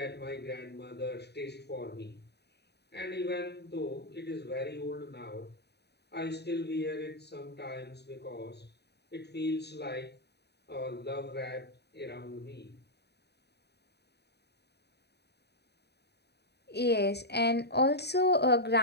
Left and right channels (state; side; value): late; right; 0.48 ms